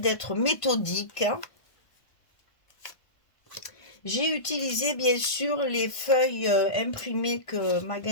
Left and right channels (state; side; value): late; right; 1.5 ms